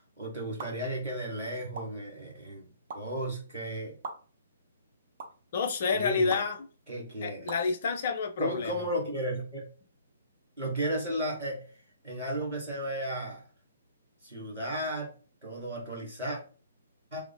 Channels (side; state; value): both; inverted; correlation -0.53